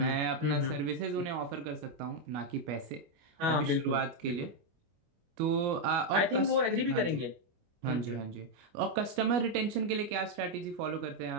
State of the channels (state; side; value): late; left; 25 ms